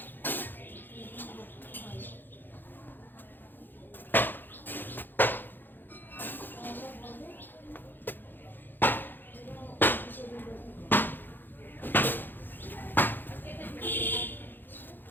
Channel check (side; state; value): right; late; 0.092 ms